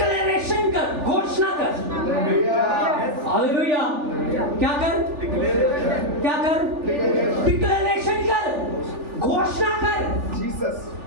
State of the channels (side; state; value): left; late; 3.4 ms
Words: कर, घोषणा कर। हालेलुया। क्या कर? क्या कर? डिक्लेरेशन कर, घोषणा कर। जीसस।